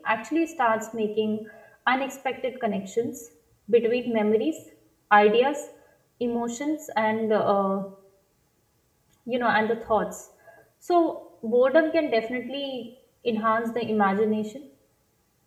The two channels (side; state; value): both; identical; correlation 1.00